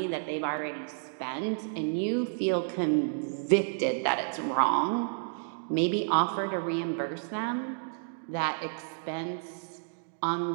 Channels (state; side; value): silent; left; digital silence